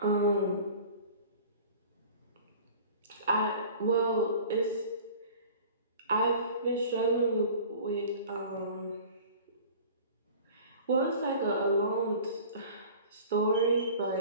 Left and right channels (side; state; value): both; inverted; correlation -0.43